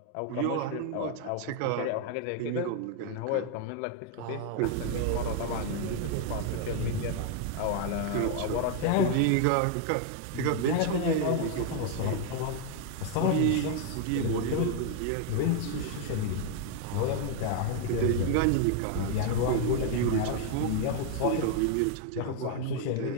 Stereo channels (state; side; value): different; both; correlation 0.00